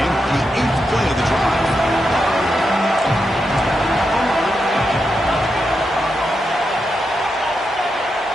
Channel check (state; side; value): normal; both; correlation 0.85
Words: the 8th play of the drive.